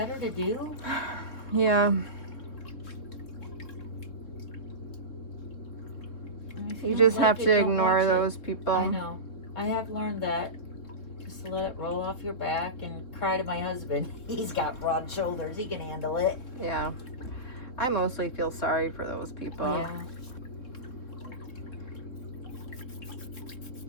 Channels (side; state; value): right; late; 3.9 ms